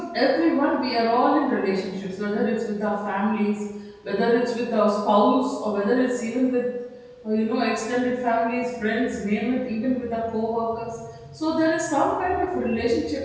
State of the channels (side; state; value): both; identical; correlation 1.00